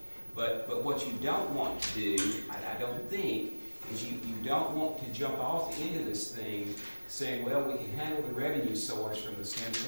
But what you don't want to do, I don't think, is you don't want to jump off into this thing saying, well, we can handle the revenue source from the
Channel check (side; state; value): both; inverted; correlation -1.00